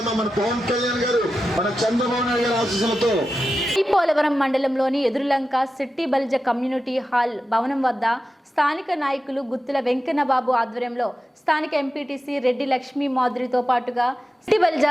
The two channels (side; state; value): both; normal; correlation 0.92